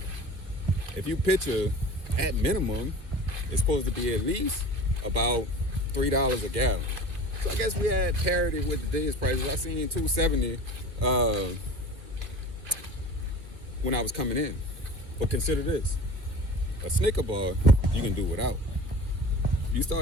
if you picture, at minimum, it's supposed to be at least about $3 a gallon. So I guess we had parity with today's prices. I seen $2.70 when I was coming in. But consider this: a Snicker bar you can do without. You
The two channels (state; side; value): late; left; 2.1 ms